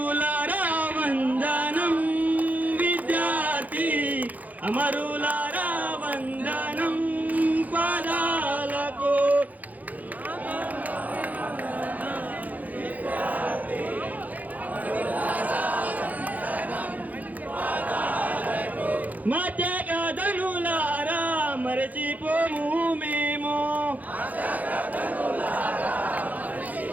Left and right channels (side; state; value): left; late; 0.079 ms